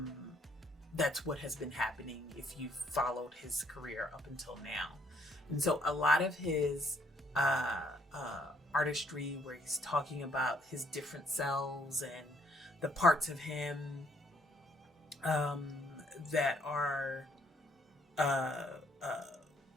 that's what has been happening if you've followed his career up until now. And so a lot of his artistry, where he's talking about his different selves and the parts of him that are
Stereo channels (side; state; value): both; normal; correlation 0.66